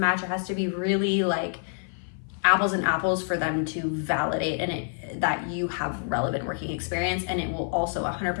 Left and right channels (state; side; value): silent; right; 55 dB below the other